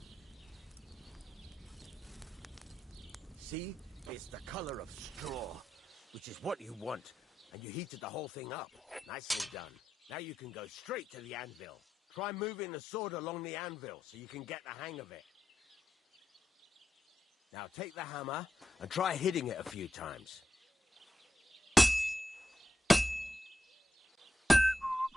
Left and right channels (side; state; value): both; normal; correlation 0.87